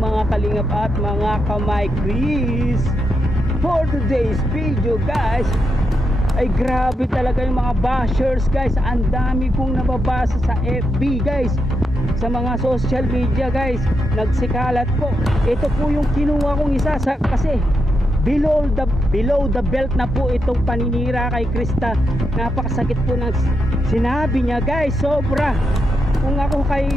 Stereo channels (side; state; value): both; normal; correlation 0.84